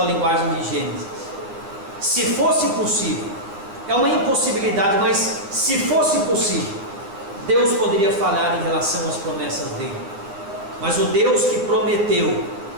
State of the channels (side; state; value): left; late; 10 ms